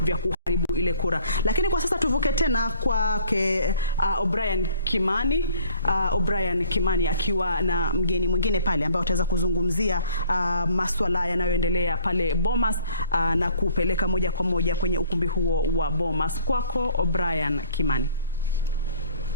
vya kuharibu ile kura. Lakini kwa sasa tuvuke tena kwake O'Brien Kimani akiwa na mgeni mwingine pale ambao wataweza kuzungumzia masuala yanayoendelea pale Bomas na kupeleka moja kwa moja kwenye ukumbi huo wa Bomas. Kwako O'Brien Kimani.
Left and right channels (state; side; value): inverted; both; correlation -0.55